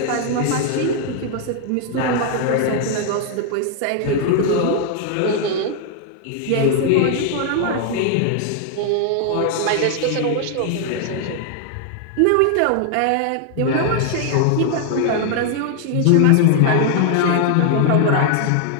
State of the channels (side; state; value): both; different; correlation 0.00